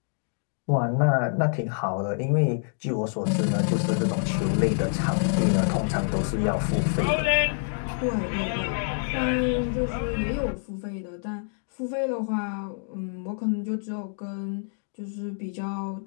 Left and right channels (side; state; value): right; silent; digital silence